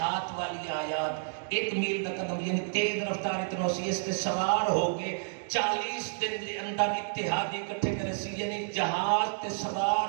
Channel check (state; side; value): silent; left; digital silence